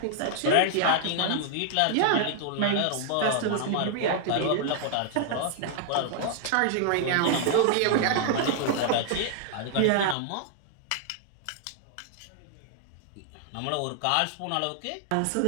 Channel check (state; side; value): different; both; correlation -0.01